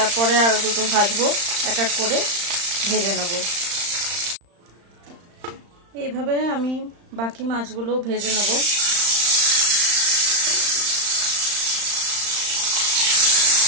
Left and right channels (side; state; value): left; late; 35 ms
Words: আরো দুটো ভাজবো, এক এক করে ভেজে নেব। এইভাবে আমি বাকি মাছগুলো ভেজে নেব।